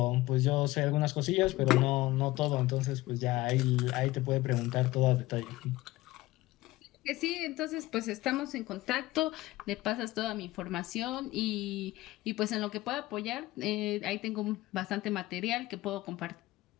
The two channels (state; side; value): quieter; right; 18.4 dB